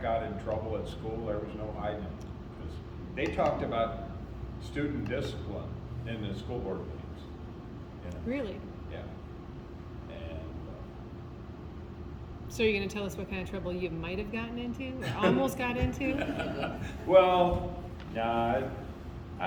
in trouble at school, there was no hiding. 'Cause they talked about student discipline in the school board meetings. You know? Really? Yeah. And So you're going to tell us what kind of trouble you might have gotten into, or almost got into? well, nah,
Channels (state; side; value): identical; both; correlation 1.00